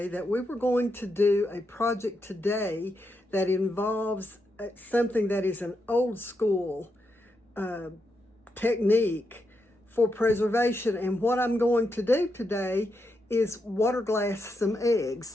that we were going to do a project today that involves something that is an old school technique for preservation. And what I'm going to do today is water glass some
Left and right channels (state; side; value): normal; both; correlation 0.83